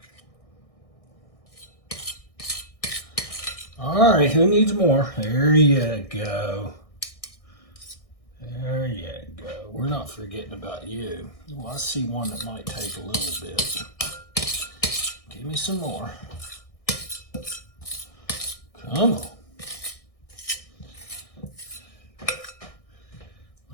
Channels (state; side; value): late; right; 1.6 ms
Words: All right, who needs more? There you go. There you go. We're not forgetting about you. Well, I see one that might take a little bit. Give me some more. Come on.